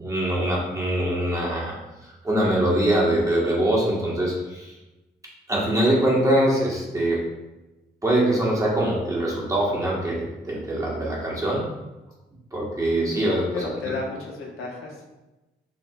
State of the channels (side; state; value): both; normal; correlation 0.67